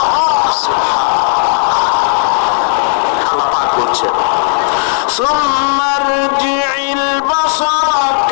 সুবহানাল্লাহ। আল্লাহ পাক বলছেন সুম্মা রজি'ল বাসারা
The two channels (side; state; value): right; silent; digital silence